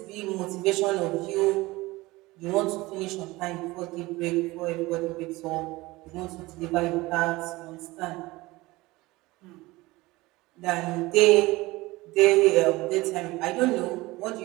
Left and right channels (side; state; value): left; quieter; 20.6 dB